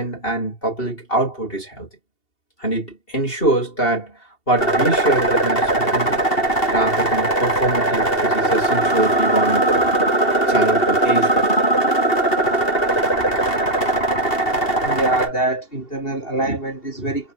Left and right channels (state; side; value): late; right; 2.7 ms